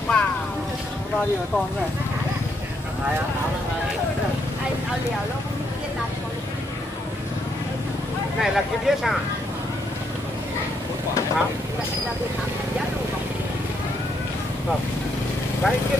bao nhiêu con này? Anh ao liều lúc kia đặt này là cái biết à? Hả? Vâng. Đấy cái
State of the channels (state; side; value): normal; both; correlation 0.75